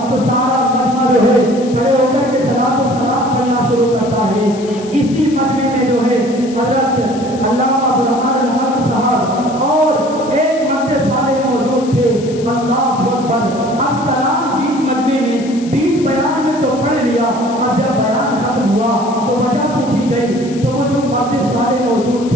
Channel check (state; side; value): noise; left; hiss, 18 dB below the sound